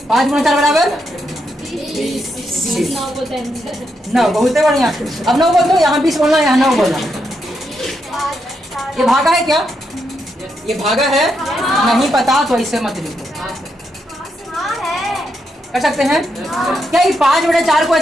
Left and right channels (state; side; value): normal; both; correlation 0.81